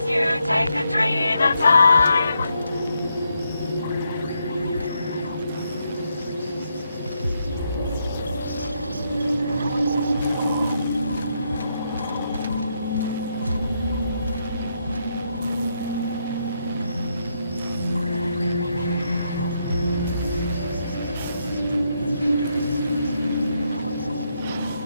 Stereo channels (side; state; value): both; inverted; correlation -0.79